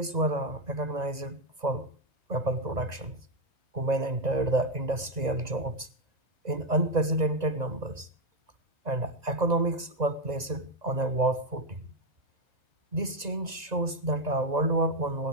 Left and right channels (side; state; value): left; late; 1.9 ms